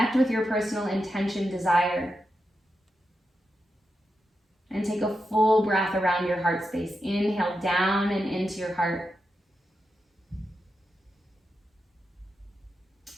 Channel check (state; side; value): normal; both; correlation 0.88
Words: with your personal intention, desire. And take a full breath around your heart space. Inhale down and into your heart.